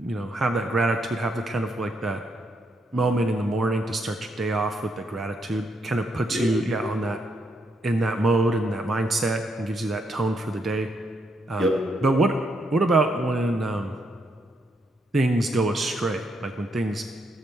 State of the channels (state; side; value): normal; both; correlation 0.77